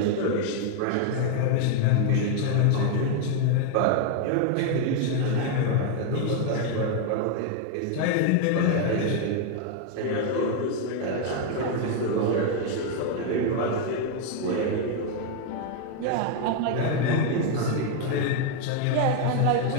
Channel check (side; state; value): both; different; correlation 0.00